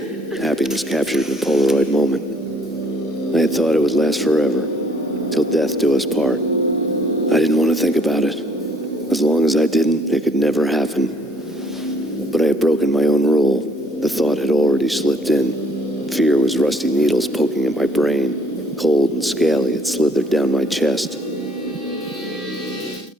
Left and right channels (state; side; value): normal; both; correlation 0.62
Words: Happiness captured in a Polaroid moment. I had thought it would last forever, till death do us part. I didn't want to think about it. As long as I didn't, it could never happen. But I had broken my own rule. The thought had already slipped in. Fear was rusty needles poking at my brain. Cold and scaly, it slithered down my chest.